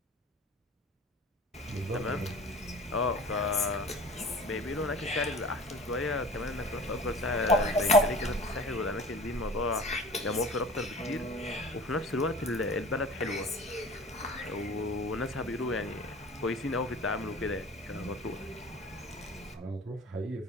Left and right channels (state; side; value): normal; both; correlation 0.40